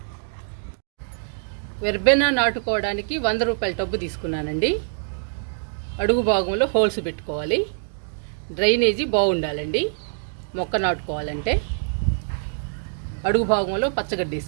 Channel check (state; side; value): silent; left; digital silence